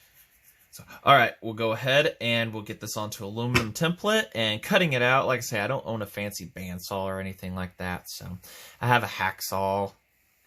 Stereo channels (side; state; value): both; identical; correlation 1.00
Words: all right, we'll go ahead and we'll get this onto aluminum template and cutting it out. Like I say, I don't own a fancy bandsaw or anything like that, so I have a hacksaw.